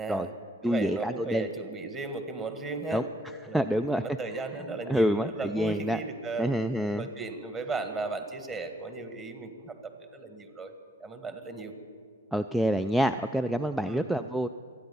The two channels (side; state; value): both; normal; correlation 0.75